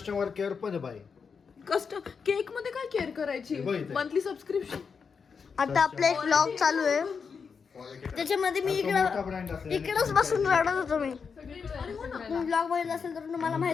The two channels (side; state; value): right; quieter; 5.8 dB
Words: केअर पण आहे बाई. केक मध्ये काय केअर करायची? बघ इथे. Monthly subscription. आता आपला एक व्लॉग चालू आहे त्याच्यामध्ये मी मोठा brand असल्याने इकडंच बसून रडत होतो. मी ब्लॉग बघितला असेल तर तुम्हाला